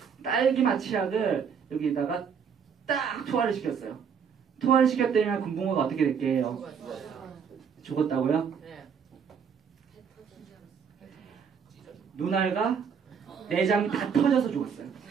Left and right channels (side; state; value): left; quieter; 6.9 dB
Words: 딸기맛 치약을 여기다가 딱 투하를 시켰어요. 투하를 시켰더니 금붕어가 어떻게 될게요? 죽었다고요? 네. 눈알과 내장이 다 터져서 죽었어요.